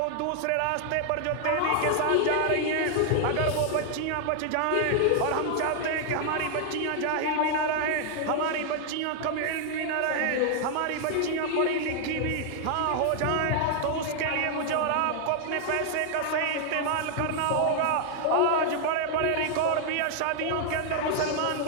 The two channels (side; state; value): both; different; correlation 0.00